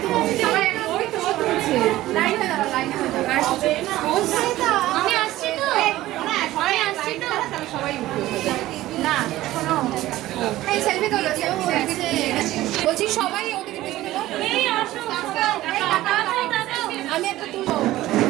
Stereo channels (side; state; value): left; quieter; 15.9 dB